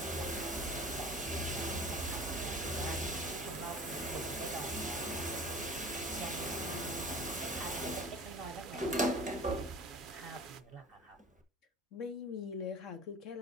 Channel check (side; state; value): both; normal; correlation 0.41